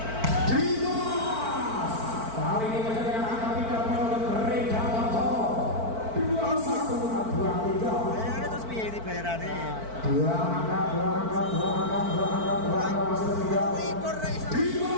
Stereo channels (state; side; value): late; left; 4.5 ms